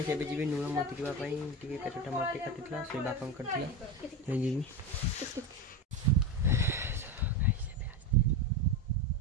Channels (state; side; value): normal; both; correlation 0.19